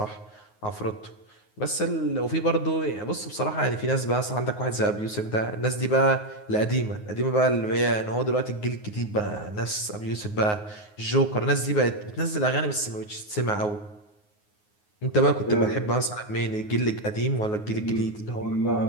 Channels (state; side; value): late; right; 9.5 ms